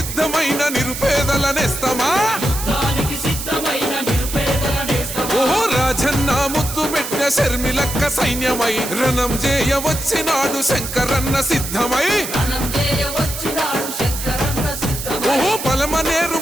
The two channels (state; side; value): noise; right; hiss, 7 dB below the sound